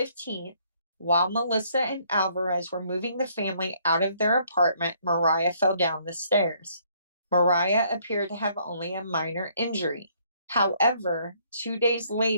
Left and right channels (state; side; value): inverted; both; correlation -0.65